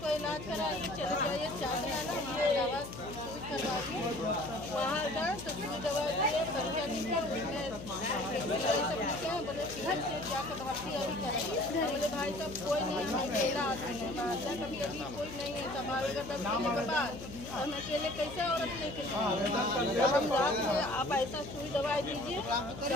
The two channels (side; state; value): left; noise; hum, 12 dB below the sound